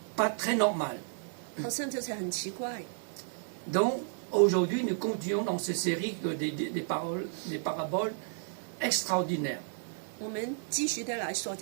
pas très normal. 好像就是很奇怪。 Donc, aujourd'hui, nous continuons dans cette série des paraboles extraordinaires. 我们继续的来说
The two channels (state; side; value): silent; left; 56 dB below the other